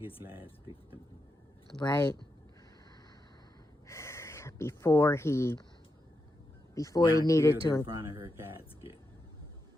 last victim. Right. Before he Got needed killed to. in front of her casket.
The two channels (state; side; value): normal; both; correlation 0.86